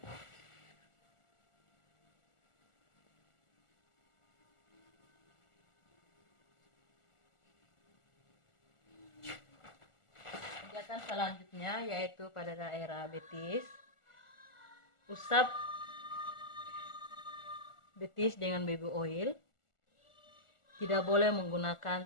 Pijatan selanjutnya yaitu pada daerah betis. Usap betis dengan baby oil. Tidak boleh menggunakan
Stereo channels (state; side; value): late; right; 1.4 ms